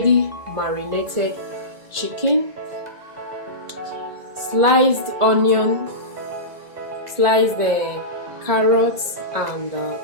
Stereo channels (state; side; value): late; left; 1.5 ms